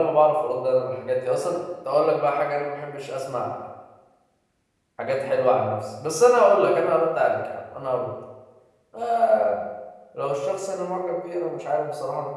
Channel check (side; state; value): both; identical; correlation 1.00